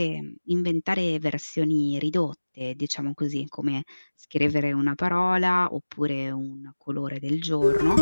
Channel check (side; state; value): both; inverted; correlation -1.00